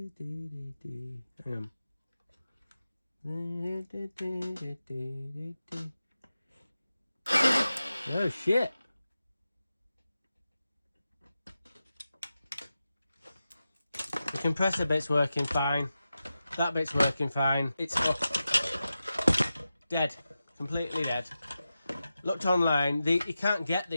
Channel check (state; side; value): inverted; both; correlation -0.92